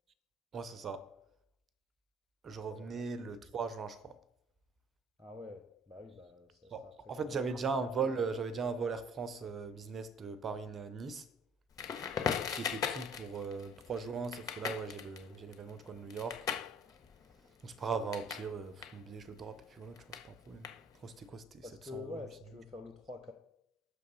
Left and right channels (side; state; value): both; normal; correlation 0.54